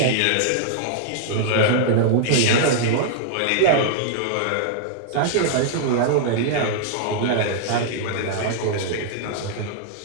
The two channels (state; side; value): different; both; correlation -0.01